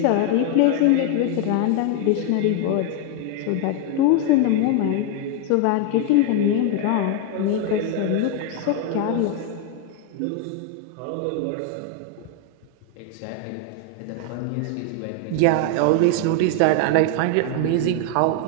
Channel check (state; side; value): different; both; correlation 0.01